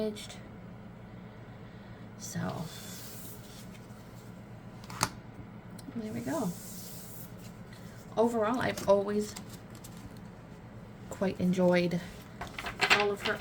So, there we go. Overall, I've always quite enjoyed all of her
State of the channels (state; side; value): identical; both; correlation 1.00